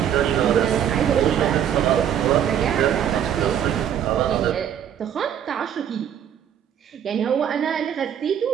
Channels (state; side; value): quieter; left; 9.5 dB